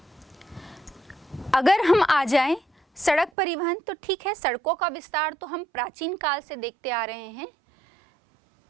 अगर हम आ जाएं सड़क परिवहन तो ठीक है, सड़कों का विस्तार तो हम प्राचीन काल से देखते आ रहे हैं,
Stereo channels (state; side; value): drops out; left; at 3.3 s